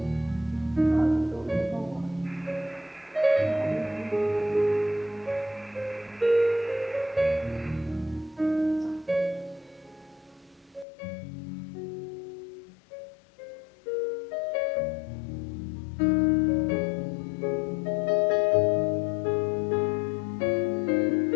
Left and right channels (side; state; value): right; drops out; at 10.9 s